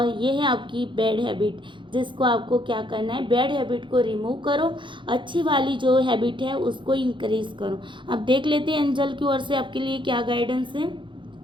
ये है आपकी बैड हैबिट, जिसको आपको क्या करना है, बैड हैबिट को रिमूव करो, अच्छी वाली जो हैबिट है उसको इंक्रीज करो। अब देख लेते हैं एंजल की ओर से आपके लिए क्या गाइडेंस है।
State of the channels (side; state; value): left; late; 0.23 ms